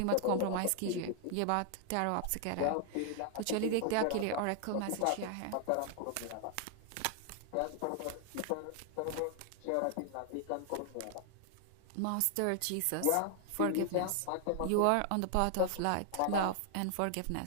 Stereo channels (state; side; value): different; both; correlation 0.00